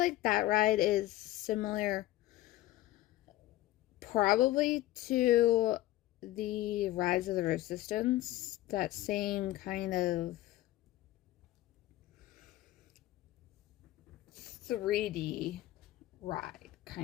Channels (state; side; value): quieter; right; 15.9 dB